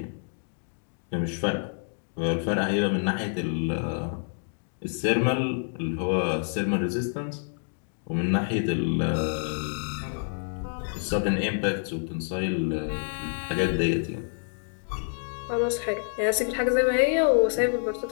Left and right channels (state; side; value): silent; right; digital silence